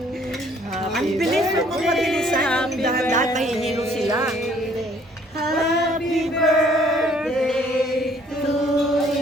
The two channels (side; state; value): both; normal; correlation 0.60